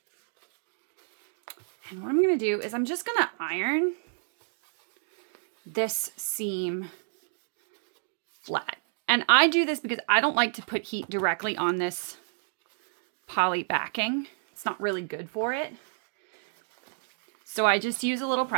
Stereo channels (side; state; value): left; silent; digital silence